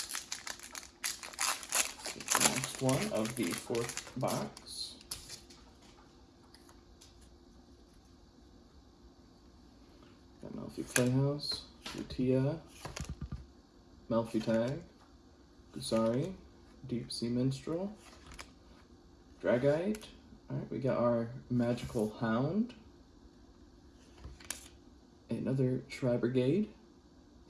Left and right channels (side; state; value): both; identical; correlation 1.00